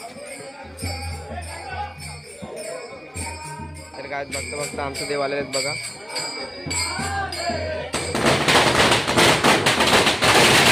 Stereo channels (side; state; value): both; identical; correlation 1.00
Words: तर काय बघता बघता आमचं देवालय आहेत बघा।